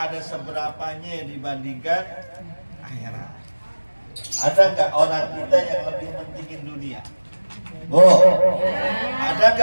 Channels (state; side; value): inverted; both; correlation -1.00